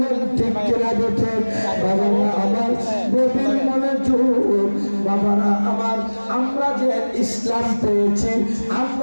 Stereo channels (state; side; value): inverted; both; correlation -1.00